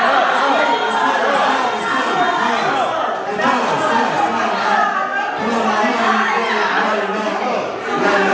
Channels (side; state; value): both; identical; correlation 1.00